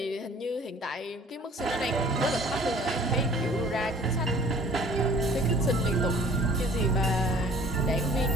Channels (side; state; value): both; normal; correlation 0.51